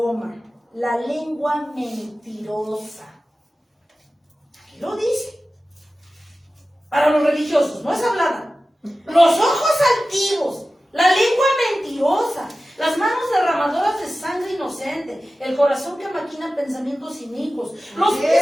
la lengua mentirosa. Aquí lo dice. Para los religiosos, no es hablada. Los ojos altivos, la lengua mentirosa, las manos derramadoras de sangre inocente, el corazón que maquina pensamientos inicuos, los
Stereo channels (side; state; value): both; normal; correlation 0.95